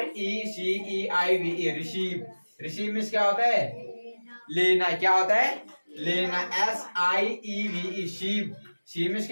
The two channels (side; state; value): both; inverted; correlation -1.00